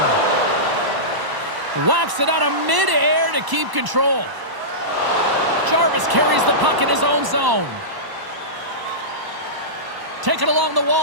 Whacks it out of mid-air to keep control. Jarvis carries the puck in his own zone. Taken along the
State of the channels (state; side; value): late; left; 1.0 ms